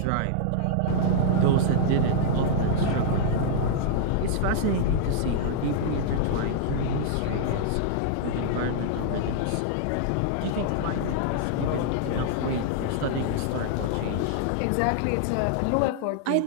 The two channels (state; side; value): different; both; correlation -0.01